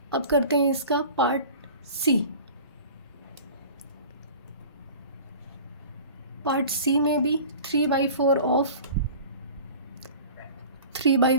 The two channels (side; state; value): both; inverted; correlation -0.42